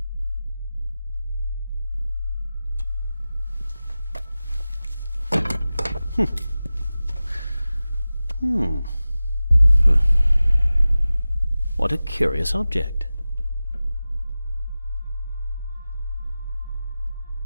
What a curious object.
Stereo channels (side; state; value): both; inverted; correlation -0.96